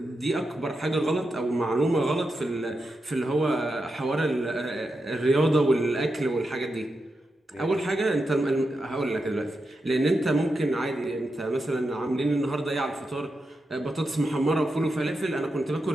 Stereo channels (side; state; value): both; normal; correlation 0.88